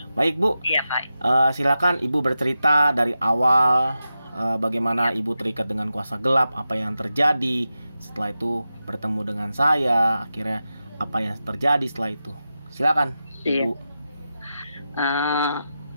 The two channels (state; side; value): inverted; both; correlation -0.91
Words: Baik, Bu. Iya Pak. Silakan Ibu bercerita dari awal, bagaimana Ibu terikat dengan kuasa gelap, apa yang terjadi. Setelah itu bertemu dengan saya, akhirnya apa yang terjadi setelah itu. Silakan, Iya. Ibu.